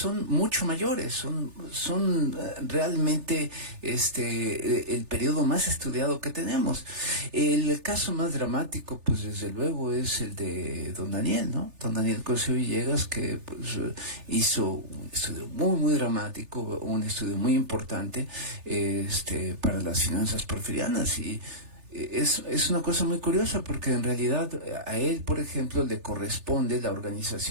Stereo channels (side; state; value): left; late; 3.4 ms